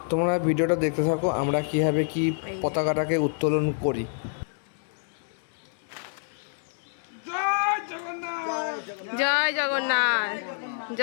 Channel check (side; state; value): right; silent; digital silence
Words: তোমরা ভিডিওটা দেখতে থাকো আমরা কীভাবে কি পতাকাটাকে উত্তোলন করি। জয় জগন্নাথ,